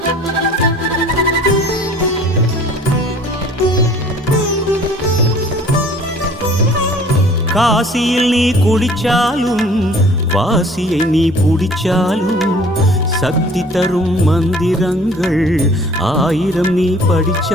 காசியில் நீ குடிச்சாலும் வாசியை நீ புடிச்சாலும் சக்தி தரும் மந்திரங்கள் 1000 நீ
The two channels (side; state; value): both; normal; correlation 0.51